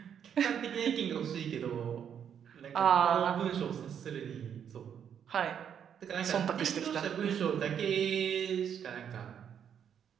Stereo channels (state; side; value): quieter; left; 8.4 dB